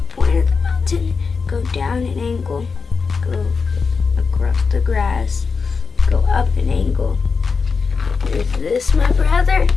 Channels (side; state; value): right; quieter; 5.0 dB